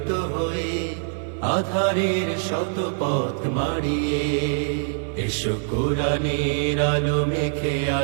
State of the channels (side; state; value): left; silent; 55 dB below the other